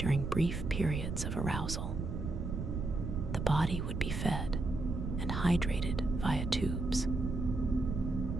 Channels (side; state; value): right; noise; rumble, 3 dB below the sound